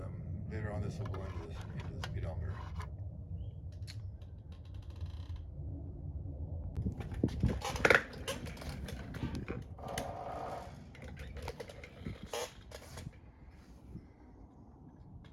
later on, this will go into the speedometer.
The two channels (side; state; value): both; identical; correlation 1.00